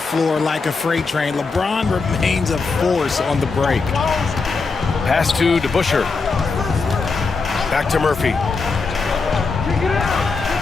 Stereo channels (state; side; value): quieter; right; 4.4 dB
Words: like a freight train. LeBron remains a force on the break. Pass to DeBusschere. Back to Murphy.